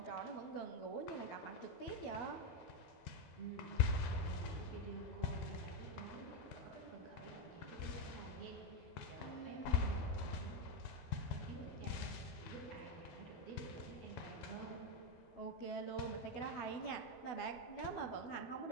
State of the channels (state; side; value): late; right; 13 ms